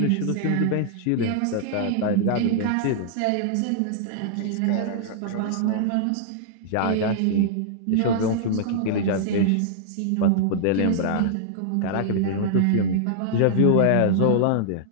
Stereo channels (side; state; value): both; different; correlation -0.01